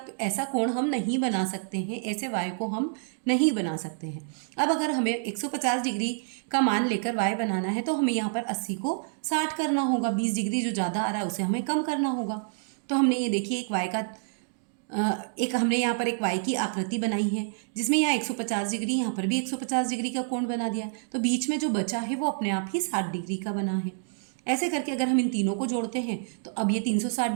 ऐसा कोण हम नहीं बना सकते हैं, ऐसे Y को हम नहीं बना सकते हैं। अब अगर हमें 150 डिग्री का मान लेकर Y बनाना है तो हमें यहाँ पर 80 को 60 करना होगा। 20 डिग्री जो ज़्यादा आ रहा है उसे हमें कम करना होगा। तो हमने ये देखिए हमने यहाँ पर एक Y की आकृति बनाई है, जिसमें यहाँ 150 डिग्री, यहाँ पर भी 150 डिग्री का कोण बना दिया। तो बीच में जो बचा है वो अपने आप ही 60 डिग्री का बना है। ऐसे करके अगर हम इन तीनों को जोड़ते हैं तो अब ये 360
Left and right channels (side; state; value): left; silent; digital silence